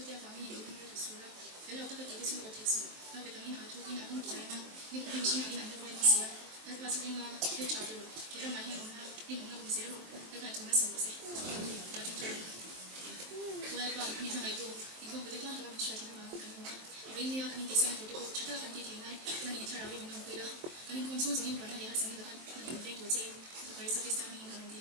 方面有用的数了，还有这个地图是我提出，那个方面图跟图在呢，你不用心里难的不会写了，那把这个呢天朝的，给了买天我们呢，你我们不写了，那个从那手不写，要从这里，我也把你看来读，你看不对，看这个不需要听的话，看我，因为你要看你第三图的，其他的地图呢，那你天朝的运动会了，那你看从这里玩那里还是那个，那你得读这，这块是第三名的问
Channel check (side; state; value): left; late; 23 ms